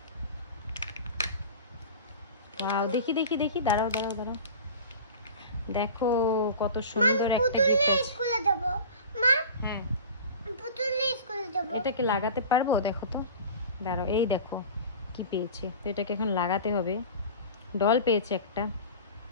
দেখি দেখি দেখি, দাঁড়াও দাঁড়াও দাঁড়াও, দেখো কত সুন্দর একটা গিফট। স্কুলে যাব মা। হ্যাঁ, পুতুল নিয়ে স্কুলে যাব। এটাকে লাগাতে পারবো? দেখো তো, দাঁড়াও, এই দেখো কি পেয়েছে। তো এটাকে এখন লাগাতে হবে। ডল পেয়েছে একটা।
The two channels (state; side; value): inverted; both; correlation -0.36